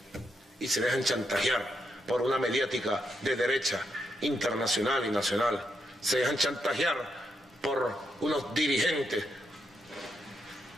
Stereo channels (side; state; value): both; normal; correlation 0.81